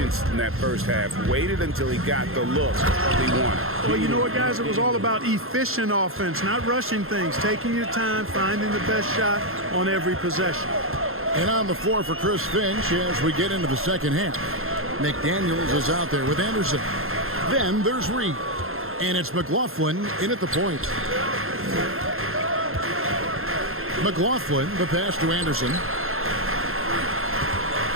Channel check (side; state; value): left; late; 0.61 ms